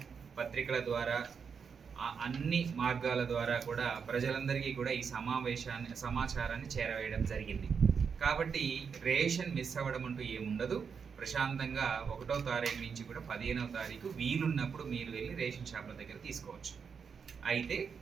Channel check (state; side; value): quieter; left; 6.2 dB